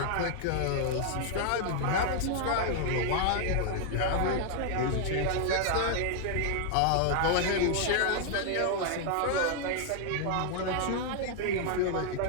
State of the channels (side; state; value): both; different; correlation 0.00